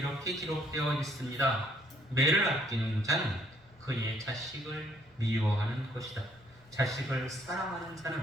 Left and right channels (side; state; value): both; normal; correlation 0.65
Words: 기록되어 있습니다. 매를 아끼는 자는 그의 자식을 미워하는 것이다. 자식을 사랑하는